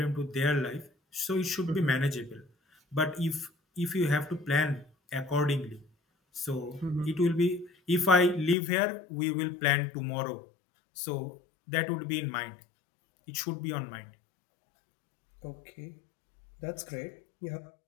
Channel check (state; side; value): drops out; right; at 8.6 s